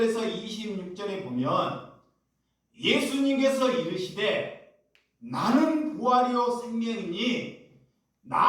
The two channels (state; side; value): identical; both; correlation 1.00